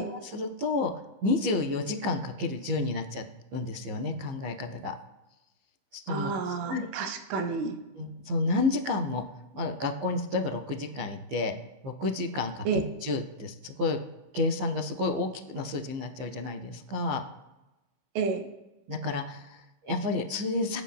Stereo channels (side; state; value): left; late; 15 ms